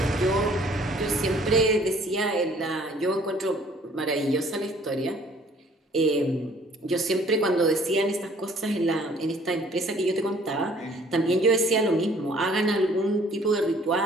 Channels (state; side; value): normal; both; correlation 0.57